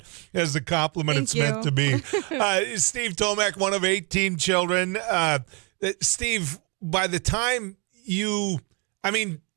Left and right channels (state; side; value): quieter; left; 32.9 dB